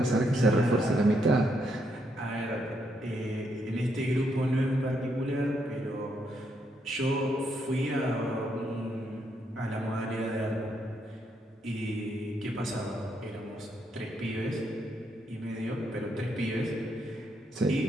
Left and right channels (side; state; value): both; normal; correlation 0.77